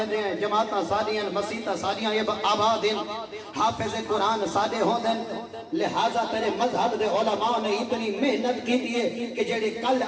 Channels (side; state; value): both; identical; correlation 1.00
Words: ہیں جماعتاں سادیاں مسیتاں سادیاں یہ آباد ہیں حافظ قرآن سادے ہوندے لہذا تیرے مذہب دے علماء نے اتنی محنت کی دیئے کہ جڑے کل